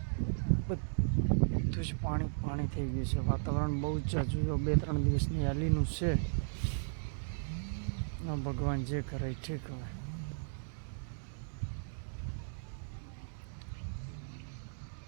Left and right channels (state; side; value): silent; left; digital silence